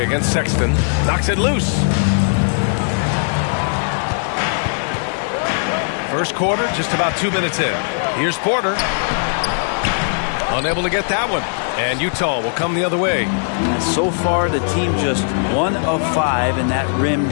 Sexton. Knocks it loose. First quarter, just about 2 minutes in. Here's Porter. Unable to get that one. And Utah will come the other way. So far, the team just 1 of 5, and that rim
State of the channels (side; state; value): right; silent; digital silence